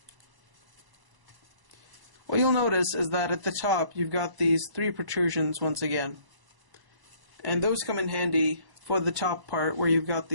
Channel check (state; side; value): late; left; 1.0 ms